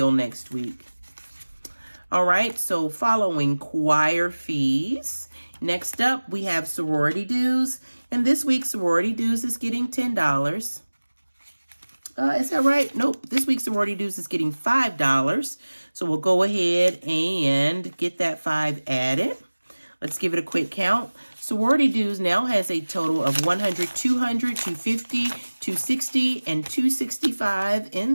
next week. All right, so following choir fees. Next up, we have sorority dues. And this week, sorority dues is getting $10. Is that right? Nope. This week's sorority dues is getting $5. So we'll go ahead and get that 5 added. Let's give it a quick count. Sorority dues now has a total of 100, 200, 250, 260, and 265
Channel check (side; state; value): both; inverted; correlation -1.00